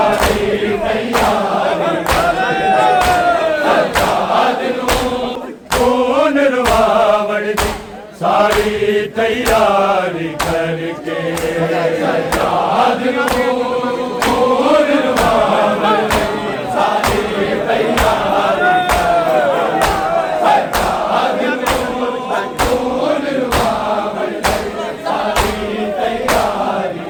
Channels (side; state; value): both; identical; correlation 1.00